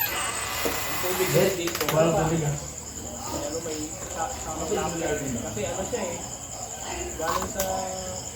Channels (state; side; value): identical; both; correlation 1.00